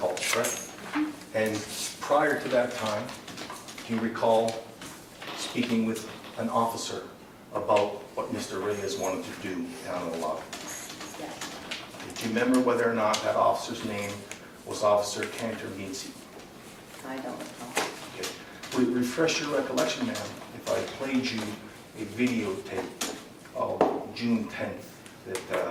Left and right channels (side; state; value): both; identical; correlation 1.00